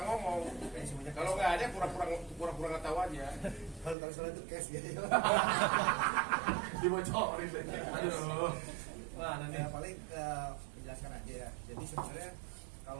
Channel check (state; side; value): drops out; left; at 4.0 s